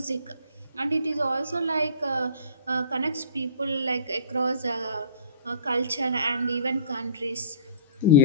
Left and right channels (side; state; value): both; inverted; correlation -0.46